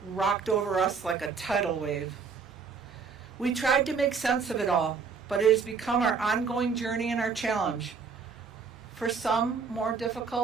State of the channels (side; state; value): left; quieter; 5.5 dB